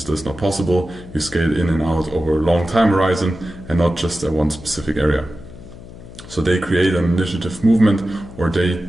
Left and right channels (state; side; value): noise; left; hum, 16 dB below the sound